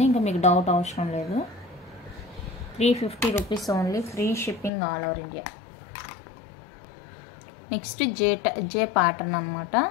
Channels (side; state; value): right; drops out; at 4.7 s